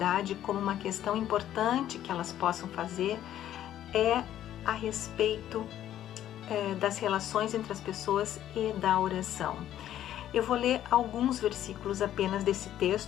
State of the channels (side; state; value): right; quieter; 11.8 dB